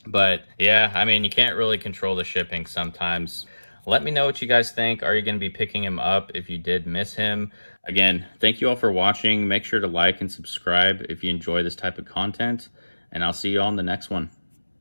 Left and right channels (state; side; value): inverted; both; correlation -1.00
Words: But yeah, I mean, you can't really control the shipping sometimes. Let me know what you guys think. Are you going to be picking him up if you did miss him? Again, thank you all for watching. Make sure to like and subscribe if you enjoy this type of content. And I'll see you all in the next one.